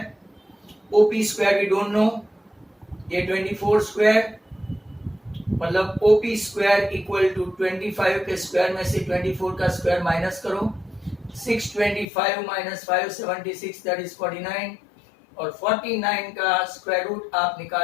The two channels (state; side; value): drops out; right; at 12.1 s